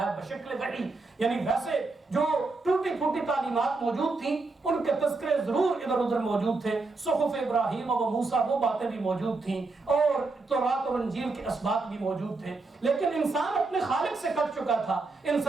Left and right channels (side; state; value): left; quieter; 3.6 dB